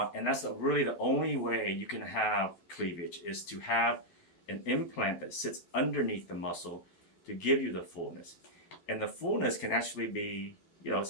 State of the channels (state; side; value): late; right; 12 ms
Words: that's really the only way you can have cleavage, is to have an implant that sits underneath the muscle to give you the fullness. And the fullness can actually be,